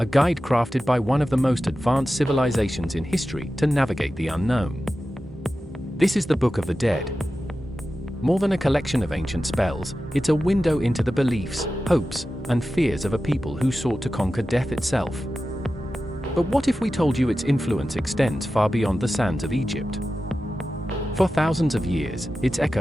guide crafted by one of the most advanced civilizations in history to navigate the unknown. This is the Book of the Dead. More than a collection of ancient spells, it's a window into the beliefs, hopes, and fears of a people who sought to conquer death itself. But what if we told you its influence extends far beyond the sands of Egypt? For thousands of years, its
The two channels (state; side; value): normal; both; correlation 0.93